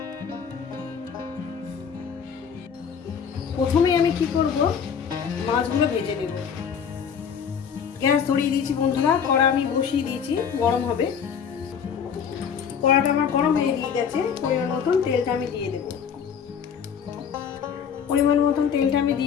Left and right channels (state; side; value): quieter; right; 7.2 dB